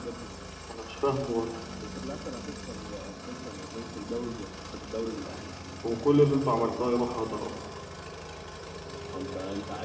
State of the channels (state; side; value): identical; both; correlation 1.00